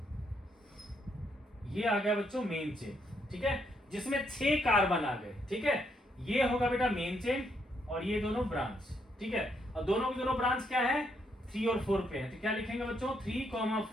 ये आ गया बच्चों मेन चेन, ठीक है, जिसमें 6 कार्बन आ गए, ठीक है। ये होगा बेटा मेन चेन और ये दोनों ब्रांच, ठीक है। और दोनों की दोनों ब्रांच क्या है, 3 और 4 पे है, तो क्या लिखेंगे बच्चों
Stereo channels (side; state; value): both; normal; correlation 0.75